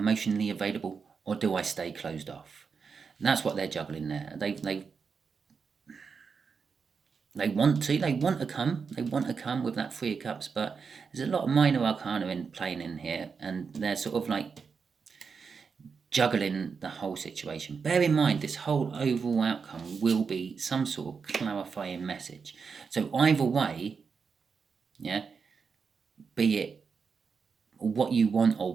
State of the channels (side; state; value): left; quieter; 5.6 dB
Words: available, or do I stay closed off? And that's what they're juggling there. They want to come with that 3 of Cups, but there's a lot of minor arcana playing in here, and they're sort of like juggling the whole situation. Bear in mind, this whole overall outcome will be some sort of clarifying message. So either way, yeah, be it what you want or